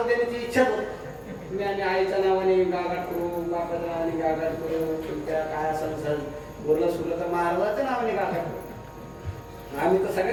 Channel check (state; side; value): identical; both; correlation 1.00